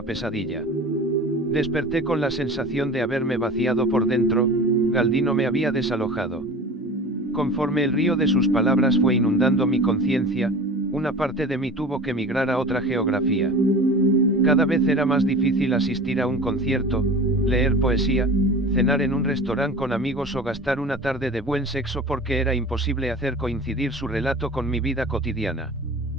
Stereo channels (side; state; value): both; normal; correlation 0.37